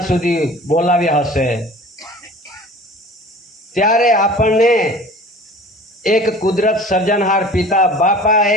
સુધી બોલાવ્યા હશે? ત્યારે આપણને એક કુદરત સર્જનહાર પિતા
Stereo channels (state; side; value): normal; both; correlation 0.43